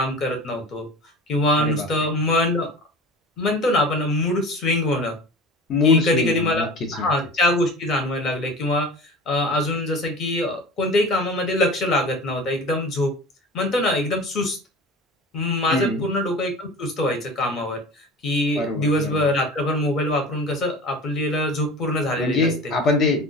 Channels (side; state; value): both; normal; correlation 0.36